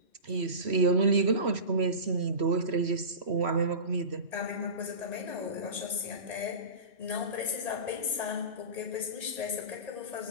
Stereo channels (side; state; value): left; late; 3.1 ms